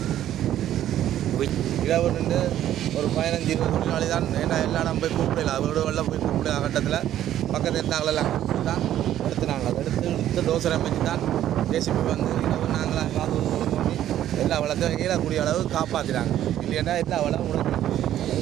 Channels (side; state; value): left; quieter; 11.9 dB